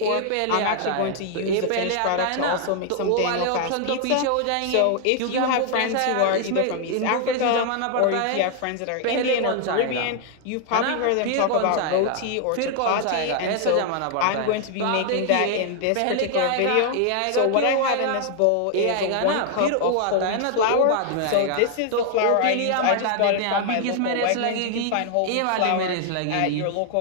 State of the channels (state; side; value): different; both; correlation 0.00